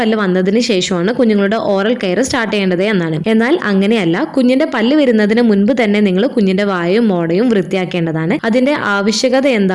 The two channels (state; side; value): identical; both; correlation 1.00